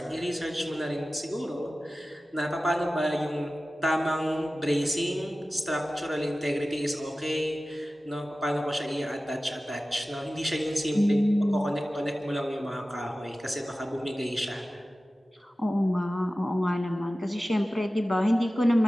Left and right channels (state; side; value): normal; both; correlation 0.96